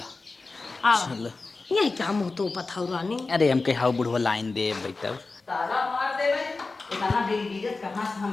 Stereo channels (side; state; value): right; quieter; 3.7 dB